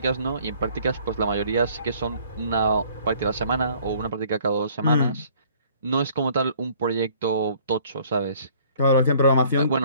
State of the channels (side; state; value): both; inverted; correlation -0.58